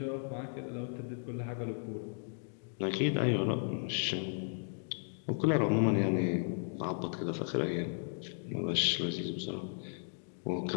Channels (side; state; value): right; silent; digital silence